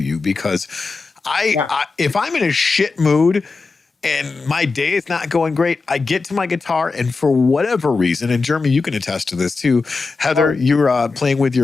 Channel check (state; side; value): quieter; right; 4.1 dB